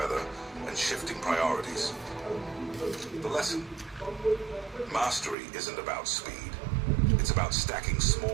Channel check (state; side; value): drops out; left; at 5.4 s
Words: and shifting priorities. The lesson: mastery isn't about speed. It's about stacking